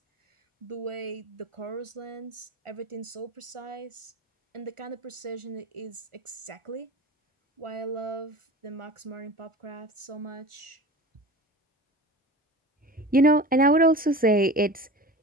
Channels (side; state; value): both; normal; correlation 0.35